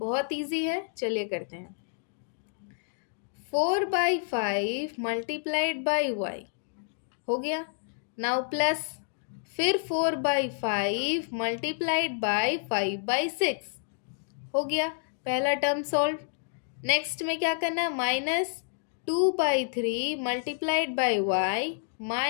इजी है, चलिए करते हैं। 4/5 मल्टीप्लाइड बाई y हो गया। नाउ प्लस, फिर 4/5 मल्टीप्लाइड बाई 5/6 हो गया। पहला टर्म सॉल्व। नेक्स्ट में क्या करना है, -2/3 multiplied by y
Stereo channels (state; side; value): silent; right; digital silence